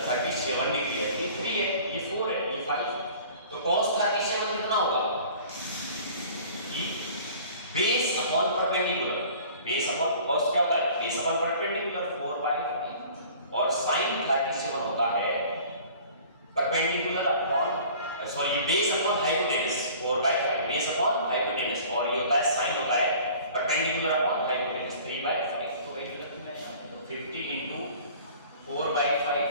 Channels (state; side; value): inverted; both; correlation -0.47